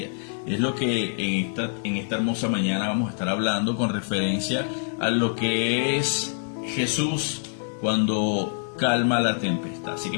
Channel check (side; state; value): right; silent; 61 dB below the other